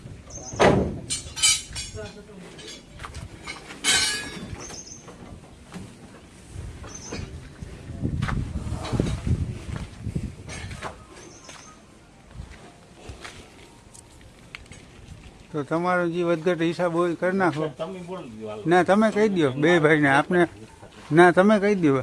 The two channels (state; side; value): identical; both; correlation 1.00